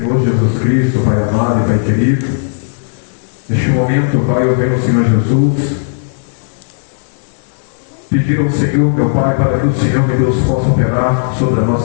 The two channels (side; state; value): right; silent; digital silence